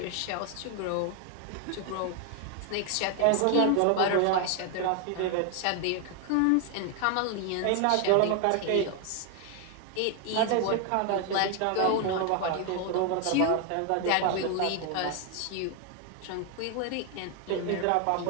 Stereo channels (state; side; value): different; both; correlation 0.00